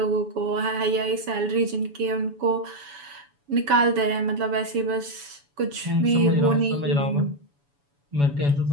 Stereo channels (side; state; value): left; late; 7.0 ms